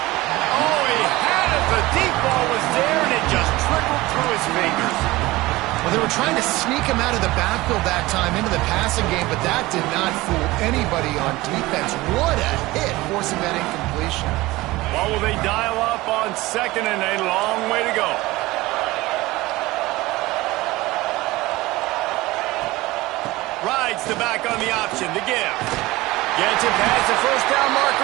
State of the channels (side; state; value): left; quieter; 19.5 dB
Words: he had it. The deep ball was there, and it just trickled through his fingers. Well, they were trying to sneak him out of the backfield that time into the passing game, but that did not fool anybody on defense. What a hit, forcing that incompletion. Well, will they dial up on second, and a long way to go. Rides the back on the option, the give. Gets it past the first down